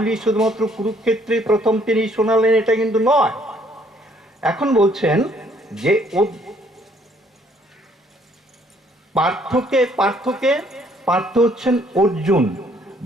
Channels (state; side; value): normal; both; correlation 0.64